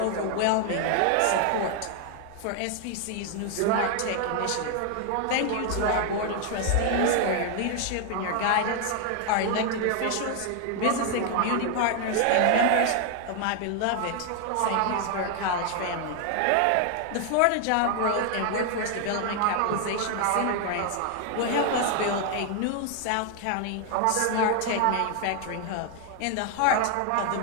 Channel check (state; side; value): different; both; correlation 0.00